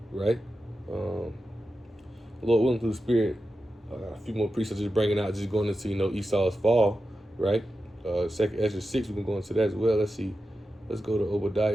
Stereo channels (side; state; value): both; normal; correlation 0.91